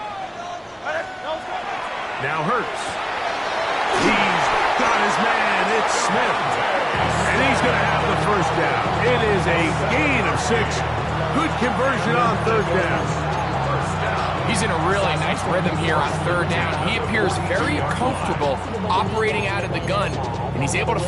Now Hurts. He's got his man. It's Smith. And he's going to have the first down. It is a gain of 6. Good conversion on third down. He's in a really nice rhythm here on third down. He appears very comfortable operating out of the gun, and he's able to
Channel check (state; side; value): identical; both; correlation 1.00